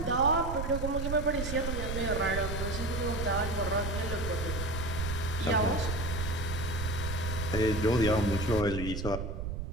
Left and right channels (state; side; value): noise; right; rumble, 4 dB below the sound